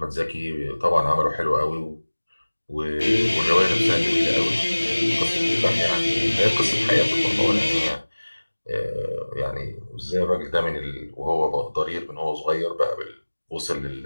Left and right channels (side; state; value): both; inverted; correlation -1.00